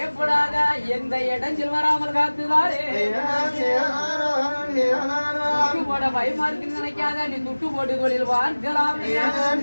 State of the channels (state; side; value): inverted; both; correlation -1.00